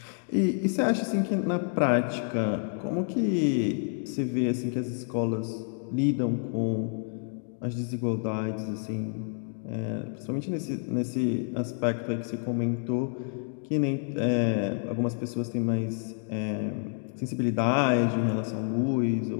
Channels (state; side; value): silent; right; 59 dB below the other